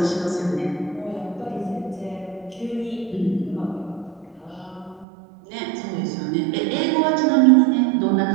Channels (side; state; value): left; drops out; at 5.1 s